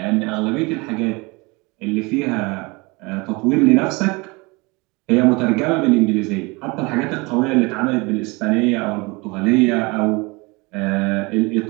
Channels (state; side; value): quieter; left; 26.1 dB